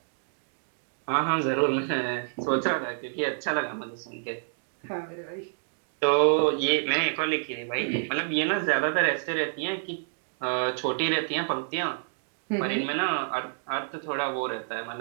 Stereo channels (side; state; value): left; silent; digital silence